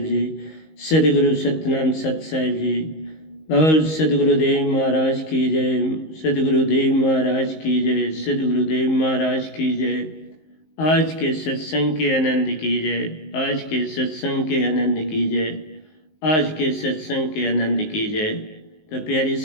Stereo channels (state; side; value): late; right; 19 ms